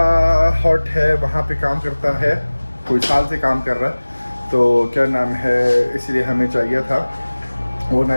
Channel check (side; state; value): both; inverted; correlation -1.00